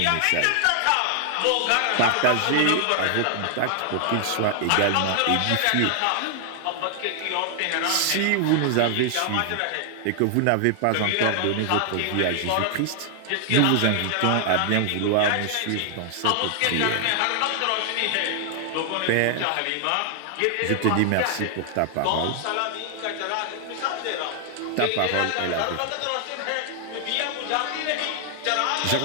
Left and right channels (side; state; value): both; different; correlation 0.00